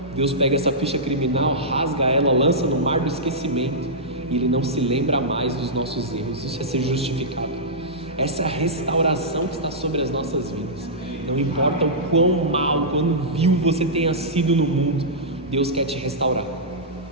Deus pega essa ficha criminal, rasga ela, lança no mar do esquecimento, e Ele não se lembra mais dos nossos erros. Isso é ser justificado. Essa é a restauração que está sobre as nossas vidas. Não importa o quão mal, quão vil você tenha sido no mundo, Deus quer te restaurar.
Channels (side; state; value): both; normal; correlation -0.13